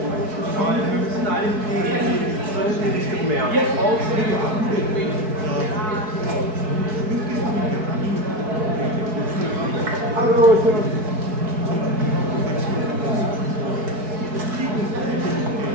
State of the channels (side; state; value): left; late; 4.6 ms